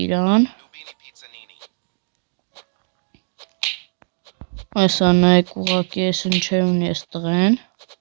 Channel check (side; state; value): left; silent; 65 dB below the other